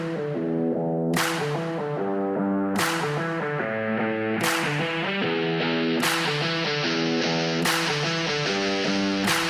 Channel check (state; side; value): identical; both; correlation 1.00